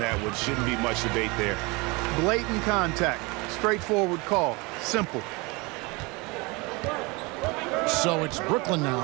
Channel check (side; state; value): left; quieter; 26.4 dB